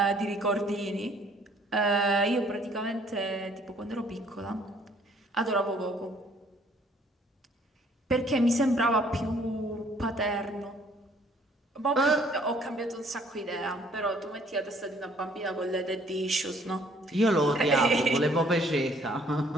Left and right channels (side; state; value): both; normal; correlation 0.61